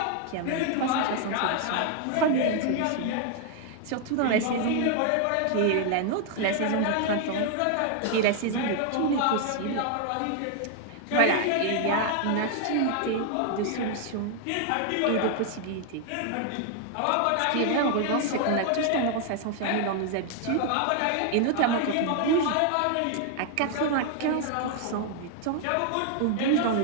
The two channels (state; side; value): different; both; correlation 0.00